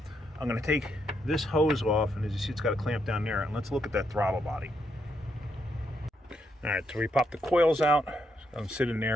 I'm going to take this hose off, and as you see, it's got a clamp down there. And let's look at that throttle body. All right, so we pop the coils out. I'm sitting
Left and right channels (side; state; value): both; normal; correlation 0.78